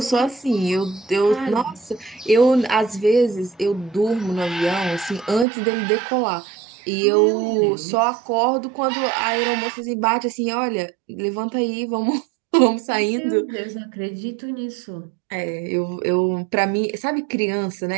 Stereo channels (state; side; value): drops out; left; at 5.5 s